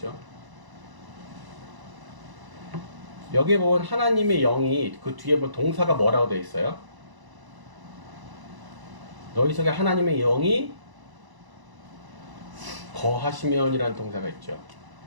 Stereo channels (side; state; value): left; late; 1.0 ms